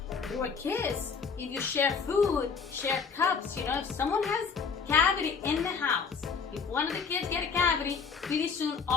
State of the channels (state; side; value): quieter; right; 5.7 dB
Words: through a kiss. If you share food, share cups, if someone has cavity in the house, if one of the kids get a cavity, pretty soon